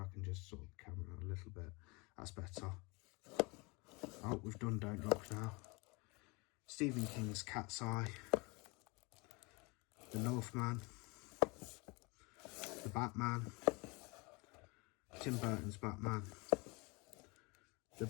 can just sort the camera out a little bit. That's better. Oh, we've done Don't Look Now. Stephen King's Cat's Eye, The Northman, The Batman, Tim Burton's Batman, The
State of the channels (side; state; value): right; quieter; 27.6 dB